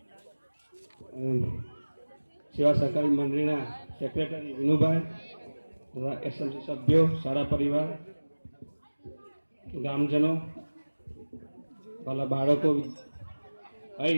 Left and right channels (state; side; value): inverted; both; correlation -1.00